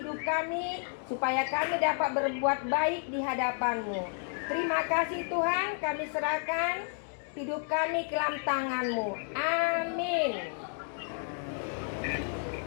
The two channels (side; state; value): right; silent; 55 dB below the other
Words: kami, supaya kami dapat berbuat baik di hadapan-Mu. Terima kasih Tuhan, kami serahkan hidup kami ke dalam tangan-Mu. Amin.